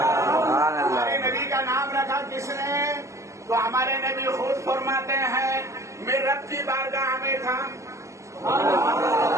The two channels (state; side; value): late; left; 0.15 ms